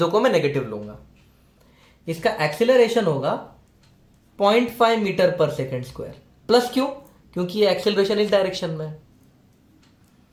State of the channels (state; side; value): identical; both; correlation 1.00